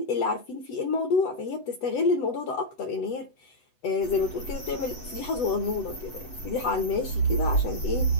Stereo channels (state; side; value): late; right; 8.0 ms